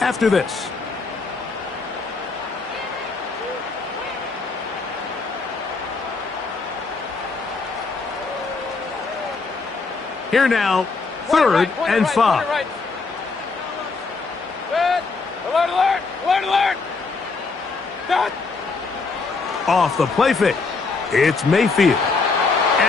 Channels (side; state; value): right; quieter; 4.2 dB